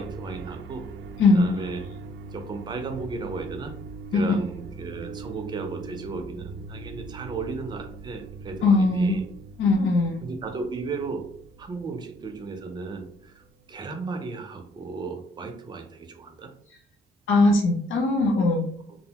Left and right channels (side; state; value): both; normal; correlation 0.65